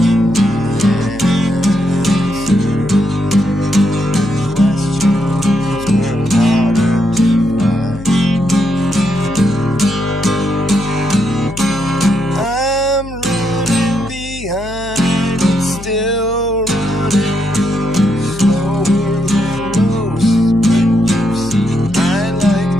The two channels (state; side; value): noise; left; hum, 14 dB below the sound